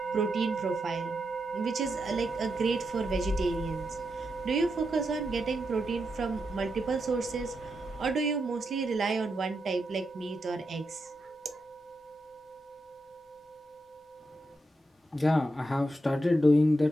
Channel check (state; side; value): normal; both; correlation 0.85